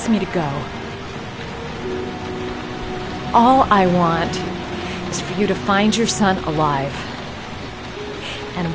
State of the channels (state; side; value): identical; both; correlation 1.00